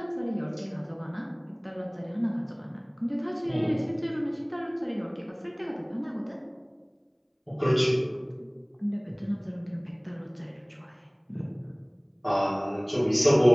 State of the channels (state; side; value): identical; both; correlation 1.00